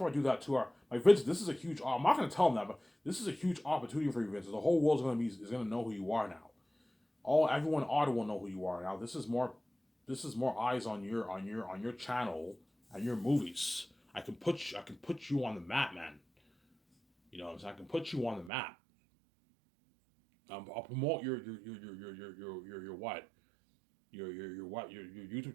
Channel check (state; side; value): drops out; left; at 18.5 s